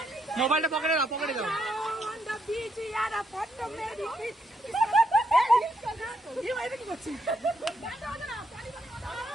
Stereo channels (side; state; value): both; normal; correlation 0.77